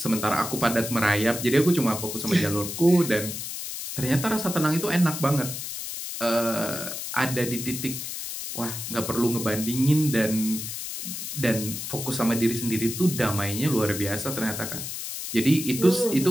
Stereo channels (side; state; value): left; noise; hiss, 6 dB below the sound